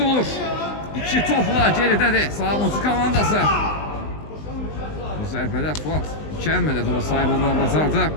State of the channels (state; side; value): late; right; 20 ms